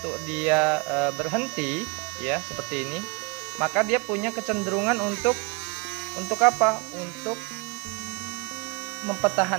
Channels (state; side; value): quieter; left; 29.9 dB